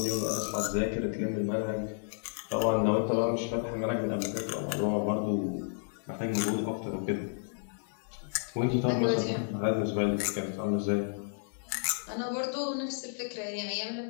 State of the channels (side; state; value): right; silent; digital silence